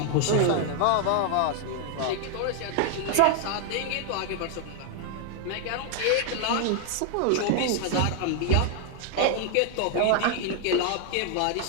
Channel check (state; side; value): different; both; correlation 0.00